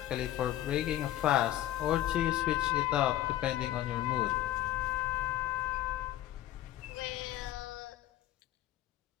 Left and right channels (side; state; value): right; quieter; 13.6 dB